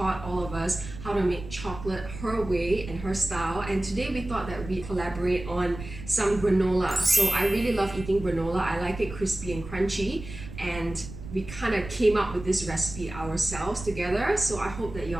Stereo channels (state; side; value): noise; right; rumble, 12 dB below the sound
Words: all of us how to make chocolate her way and her style, and today we thought that we'd collaborate on some granola. So I really love eating granola. I like it crispy and crunchy, and we kind of came up with this recipe ourselves together, so I hope that